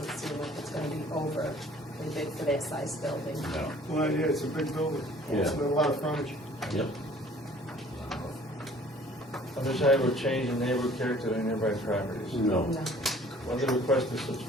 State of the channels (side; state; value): both; normal; correlation 0.53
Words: seem like it's gonna be overly big for that size building. No. Well, yeah, it's a big building. It's Yeah. a lot of frontage. Yep. Undesirable change in neighborhood character of nearby properties. No. No. Whether the request is